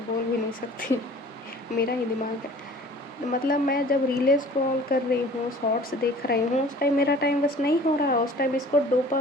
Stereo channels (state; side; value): normal; both; correlation 0.47